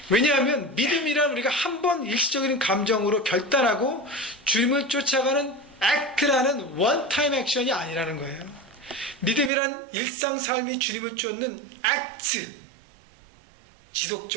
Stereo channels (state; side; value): drops out; left; at 9.5 s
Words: 왜냐하면 믿음이란 우리가 한번 일시적인 감정으로 결단하고 주님을 쫓아가는 act라는 원타임 액션이 아니라는 거예요. 믿음이란 일상 삶이 주님을 쫓는 act,